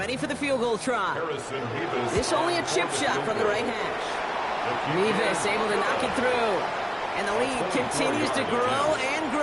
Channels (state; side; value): identical; both; correlation 1.00